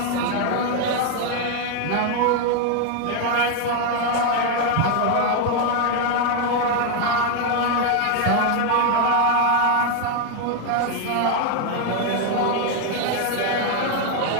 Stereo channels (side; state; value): both; different; correlation 0.01